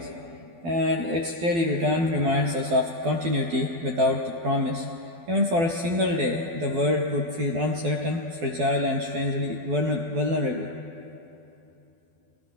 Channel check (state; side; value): late; left; 12 ms